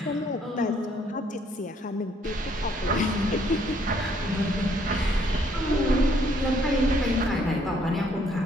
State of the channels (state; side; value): normal; both; correlation 0.66